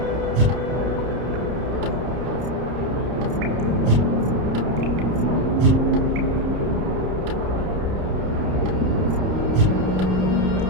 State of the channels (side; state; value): left; late; 30 ms